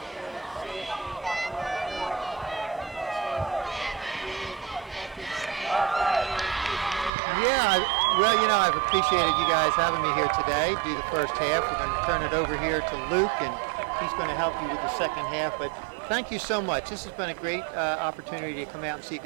Yeah, well, you know, I've appreciated you guys having me here today. Do the first half. We're going to turn it over here to Luke, and he's going to help you with the second half. But thank you so much. This has been a great opportunity to come out and see a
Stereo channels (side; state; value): left; drops out; at 7.1 s